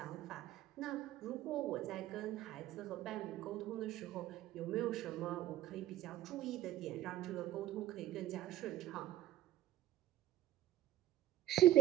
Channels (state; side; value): quieter; left; 13.8 dB